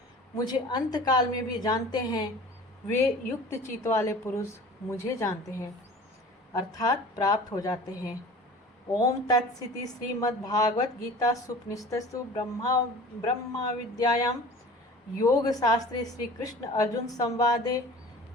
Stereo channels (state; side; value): normal; both; correlation 0.42